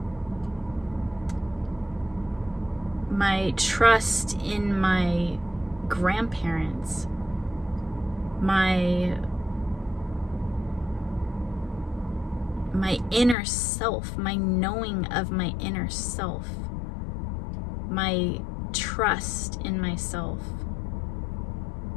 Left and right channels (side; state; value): right; drops out; at 13.4 s